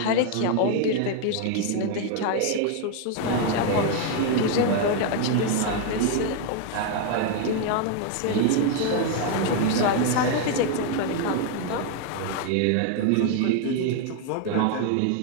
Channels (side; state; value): both; different; correlation 0.01